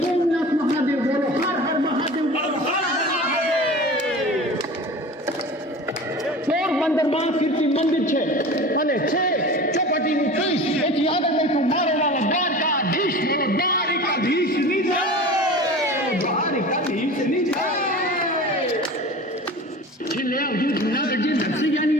સોમનાથ મહાદેવ બોલો હર હર મહાદેવ પોરબંદરમાં કીર્તિ મંદિર છે અને છે ચોપાટીનું ત્રીસ એથી આગળ બેઠું મારો વાળા દ્વારકાધીશ બોલો દ્વારિકાધીશની જય દ્વારિકાધીશની જય. છેલ્લે આવજો જૂનાગઢની નરસિંહની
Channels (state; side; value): normal; both; correlation 0.36